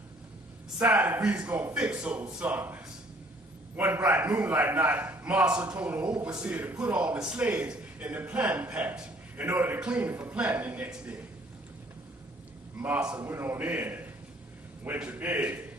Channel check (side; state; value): both; normal; correlation 0.59